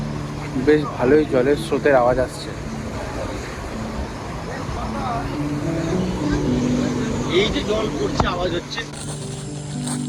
বেশ ভালোই জলের স্রোতের আওয়াজ আসছে। এই যে জল পড়ছে, আওয়াজ হচ্ছে।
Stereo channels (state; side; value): identical; both; correlation 1.00